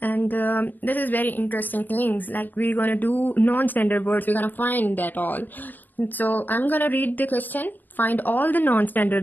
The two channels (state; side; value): late; right; 0.087 ms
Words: and this is very interesting things, like we're gonna do non-standard words, we're gonna find that all. So I'm gonna read the question. Find all the